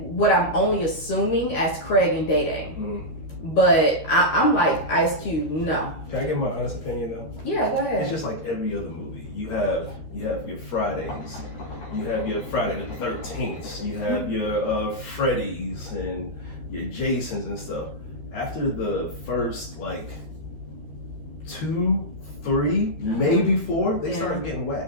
what I'm only assuming as Craig and Day Day. But I'm like, Ice Cube, no. Can I give my honest opinion though? Yeah, go ahead. It's just like every other movie. You have your Fridays, you have your Friday the 13th, you have your Freddy's and your Jasons and stuff. After the first like 2, 3, maybe 4, they start getting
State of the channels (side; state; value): right; late; 13 ms